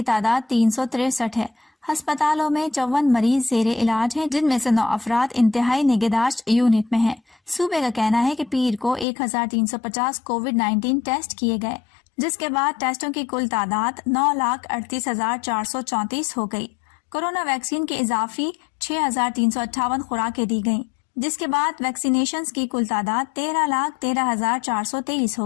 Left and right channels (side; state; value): right; drops out; at 9.1 s